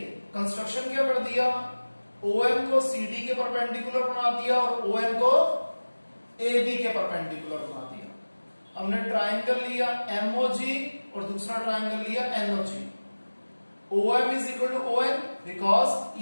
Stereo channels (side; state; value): both; inverted; correlation -1.00